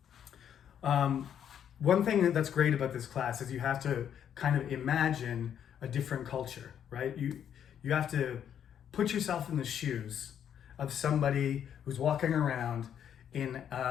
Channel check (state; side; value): quieter; right; 9.2 dB